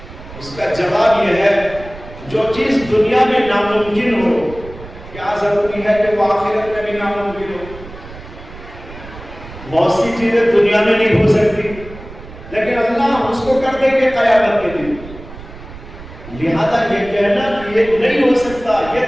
اس کا جواب یہ ہے جو چیز دنیا میں ناممکن ہو کیا ضروری ہے کہ وہ آخرت میں بھی ناممکن ہو؟ بہت سی چیزیں دنیا میں نہیں ہو سکتی لیکن اللہ اس کو کر دیں گے قیامت کے دن۔ لہذا یہ کہنا کہ یہ نہیں ہو سکتا یہ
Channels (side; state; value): right; noise; rumble, 16 dB below the sound